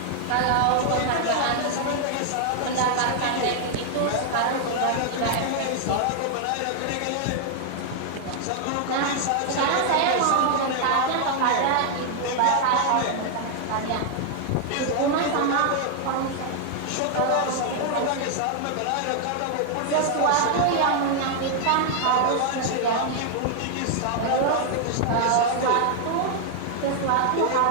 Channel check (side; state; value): both; different; correlation 0.00